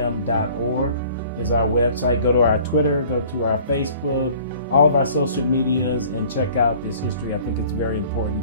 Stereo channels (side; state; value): both; inverted; correlation -0.51